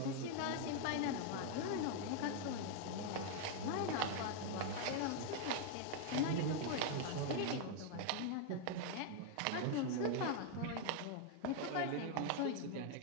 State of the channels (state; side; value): different; both; correlation 0.00